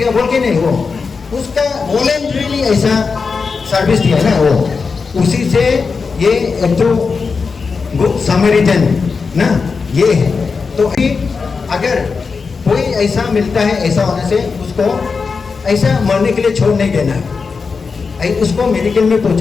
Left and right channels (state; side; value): quieter; right; 5.0 dB